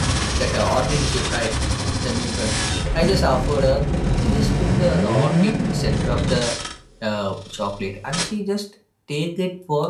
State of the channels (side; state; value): both; identical; correlation 1.00